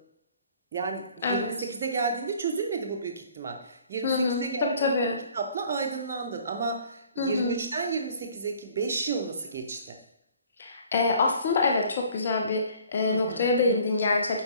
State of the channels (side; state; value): both; inverted; correlation -0.54